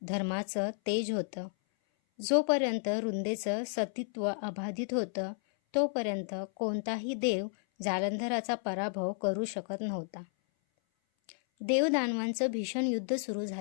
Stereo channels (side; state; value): right; silent; 56 dB below the other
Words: धर्माचं तेज होतं. जोपर्यंत रुंदेचं सतीत्व अबाधित होतं, तोपर्यंत कोणताही देव जालंधराचा पराभव करू शकत नव्हता. देवदानवांचं भीषण युद्ध सुरू